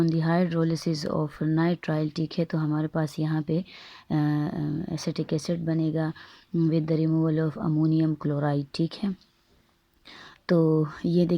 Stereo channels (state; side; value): identical; both; correlation 1.00